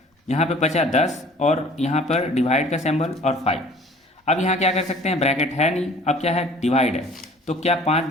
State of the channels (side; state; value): both; normal; correlation 0.50